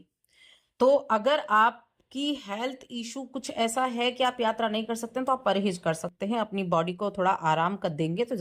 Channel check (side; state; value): both; identical; correlation 1.00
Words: तो अगर आपकी हेल्थ इशू कुछ ऐसा है कि आप यात्रा नहीं कर सकते हैं तो आप परहेज कर सकते हैं, अपनी बॉडी को थोड़ा आराम कर देंगे तो